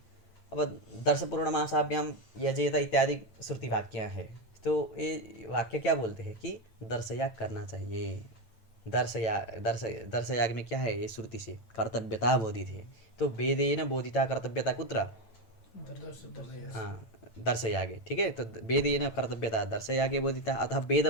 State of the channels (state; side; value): late; right; 9.1 ms